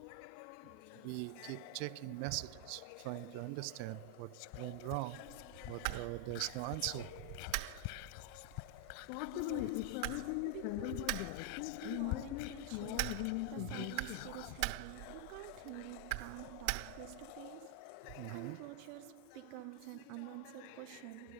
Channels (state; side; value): different; both; correlation 0.00